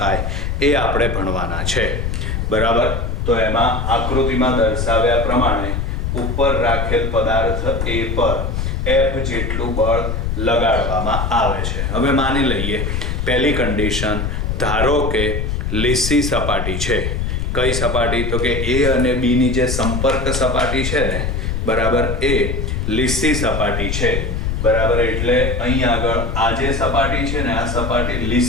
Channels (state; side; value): noise; left; rumble, 1 dB below the sound